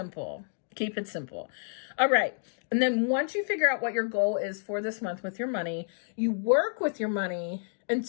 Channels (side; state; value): right; silent; digital silence